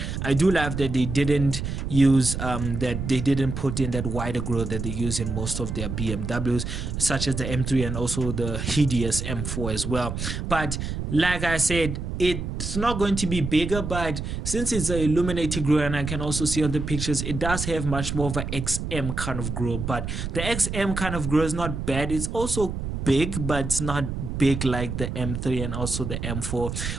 I do love that they didn't use that they didn't put in that wider grille that they use in most of their BMWs, such as the M3 and also the hideous M4 as well. But like I said, it's not going to be bigger, but since it's an illuminated grille, and I can also see on the pictures, it does have much more of an XM kind of grille. But the XM kind of grille is not bad. It's also big, but it's not big like the M3 and also the M4.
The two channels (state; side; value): noise; right; rumble, 4 dB below the sound